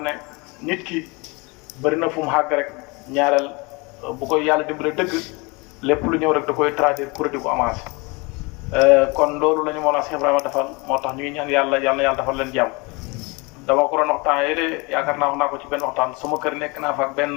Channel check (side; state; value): right; quieter; 27.5 dB